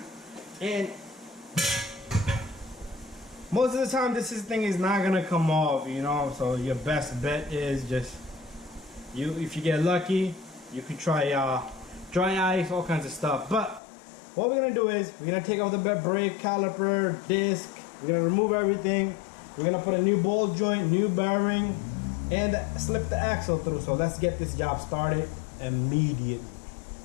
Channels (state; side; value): drops out; right; at 13.8 s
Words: And most of the time, this thing is not gonna come off, you know. So your best bet is just if you get lucky, you can try dry ice, all kinds of stuff. But what we're gonna do is we're gonna take off the brake caliper, disc. We're gonna remove everything. We're gonna put a new ball joint, new bearing, and slip the axle through. So let's get this job started immediately.